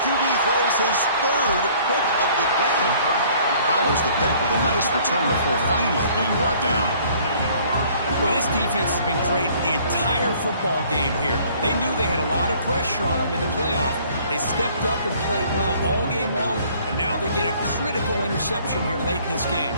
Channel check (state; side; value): inverted; both; correlation -0.57